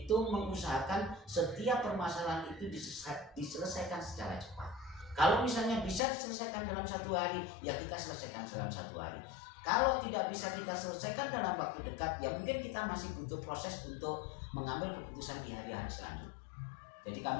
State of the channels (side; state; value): right; drops out; at 6.0 s